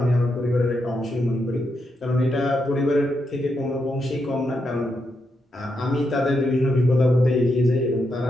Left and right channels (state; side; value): normal; both; correlation 0.82